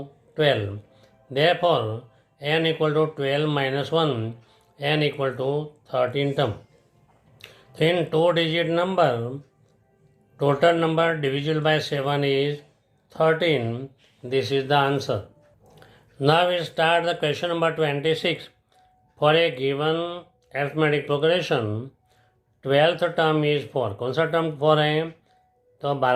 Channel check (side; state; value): both; identical; correlation 1.00